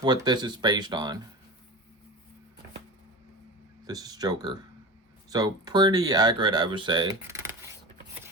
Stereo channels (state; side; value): normal; both; correlation 0.29